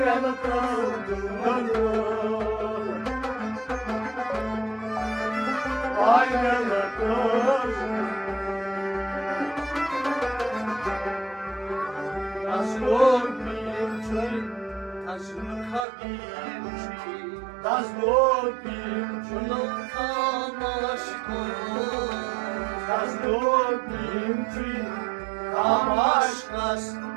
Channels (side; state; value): left; drops out; at 15.9 s